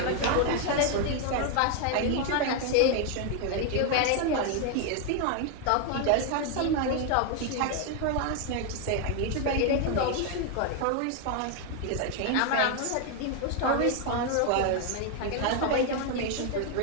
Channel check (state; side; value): different; both; correlation 0.01